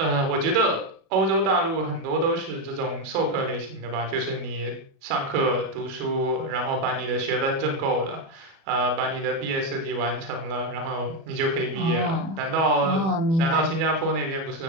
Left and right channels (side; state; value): left; late; 36 ms